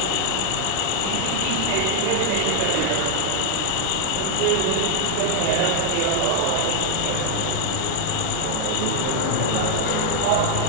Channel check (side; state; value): both; different; correlation 0.00